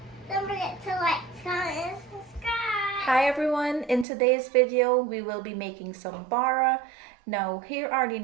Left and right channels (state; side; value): drops out; left; at 4.0 s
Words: Don't forget to like, comment, and subscribe. Hi everyone, in today's video we will be making some bara. Now here are the